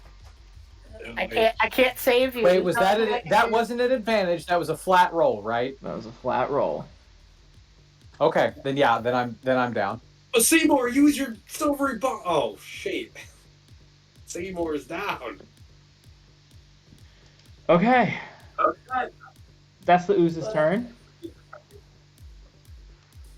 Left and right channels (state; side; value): identical; both; correlation 1.00